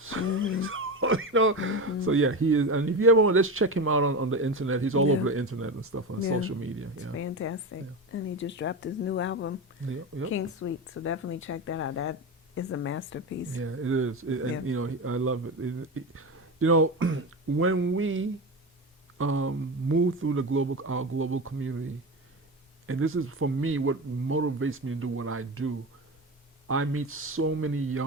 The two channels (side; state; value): both; normal; correlation 0.22